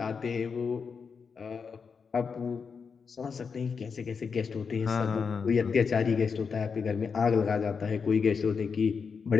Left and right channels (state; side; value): quieter; right; 5.7 dB